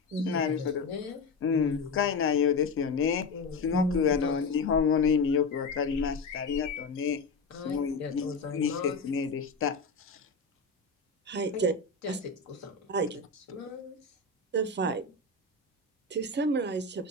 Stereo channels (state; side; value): quieter; right; 4.0 dB